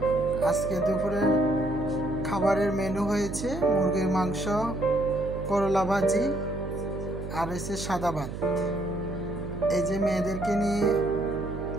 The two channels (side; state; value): right; noise; hum, 8 dB below the sound